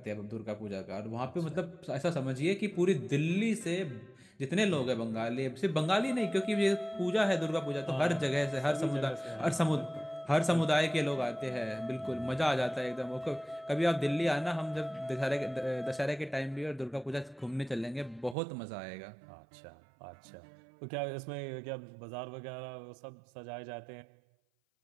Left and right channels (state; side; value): drops out; left; at 18.4 s